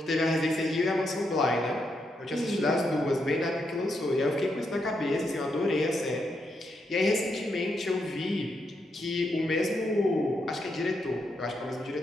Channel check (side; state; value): both; normal; correlation 0.81